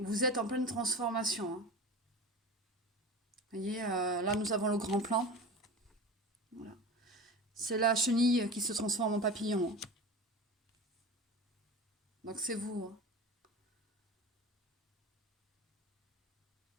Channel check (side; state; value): both; normal; correlation 0.31